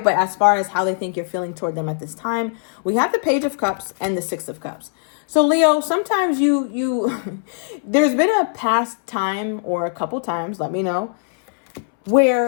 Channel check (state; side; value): silent; right; 65 dB below the other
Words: but as far as how they think you're feeling toward them at this time, we have the Page of Cups and the Six of Cups. So Leo, sometimes you there's been a past time or a couple times, let me know,